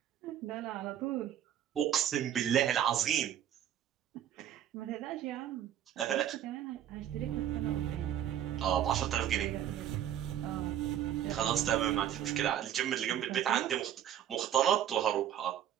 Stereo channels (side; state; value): left; quieter; 10.6 dB